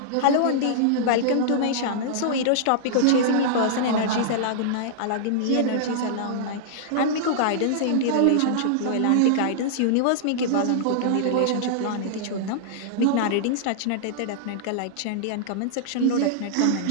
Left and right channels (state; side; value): different; both; correlation -0.02